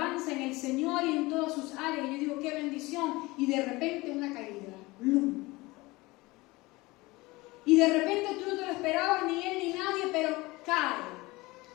en el Señor y en todas sus áreas. Y yo digo, qué bendición. Y de repente una caída. ¡Blum! Y de repente tú no te lo esperabas, ni él ni nadie, pero cae.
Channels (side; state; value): right; quieter; 21.8 dB